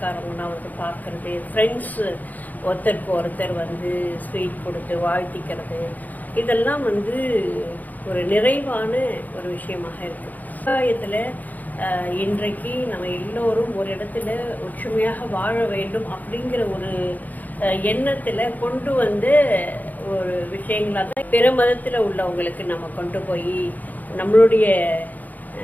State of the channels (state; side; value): late; right; 0.081 ms